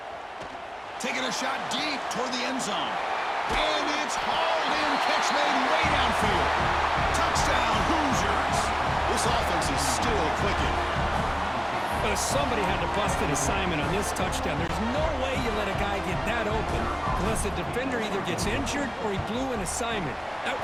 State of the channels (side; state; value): both; identical; correlation 1.00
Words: Taking a shot deep toward the end zone. And it's hauled in. Catch made way downfield. Touchdown, Hoosiers. This offense is still clicking. But somebody had to bust an assignment on this touchdown. There's no way you let a guy get that open unless the defender either gets injured or he blew an assignment. That